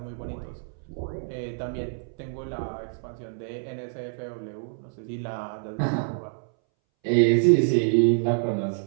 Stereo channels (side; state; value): left; silent; 60 dB below the other